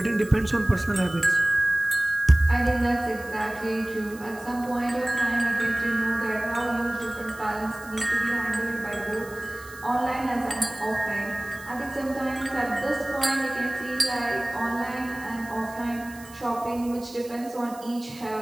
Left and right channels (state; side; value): noise; right; hiss, 20 dB below the sound